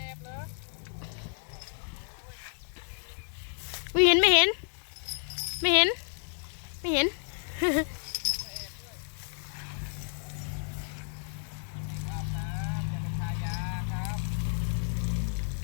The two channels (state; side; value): silent; right; 57 dB below the other